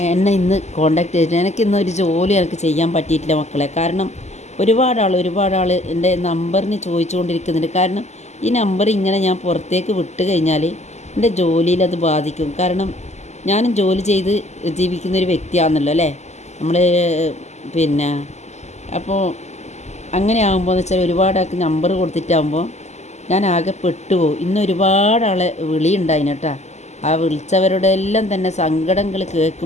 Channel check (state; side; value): late; right; 0.33 ms